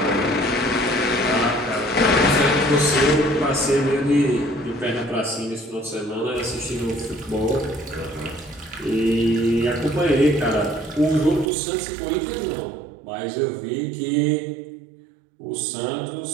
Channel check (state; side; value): drops out; left; at 11.5 s